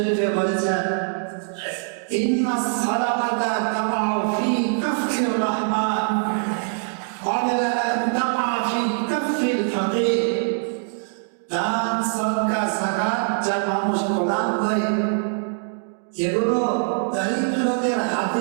বলেছেন, ইন্নাস সালাতা তাকাউ ফি কাফির রাহমান ক্বাবলা আন তাকা ফি কাফিল ফাকির। দান সাদকা যাকাত যা মানুষ প্রদান করে এগুলো দরিদ্রদের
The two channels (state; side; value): silent; left; 63 dB below the other